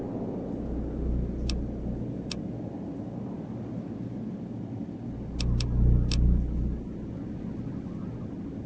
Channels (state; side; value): identical; both; correlation 1.00